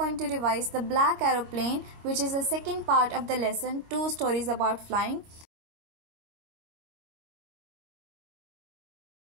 to revise the Black Aeroplane, which is the second part of the lesson 2 stories about flying.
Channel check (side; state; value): left; late; 26 ms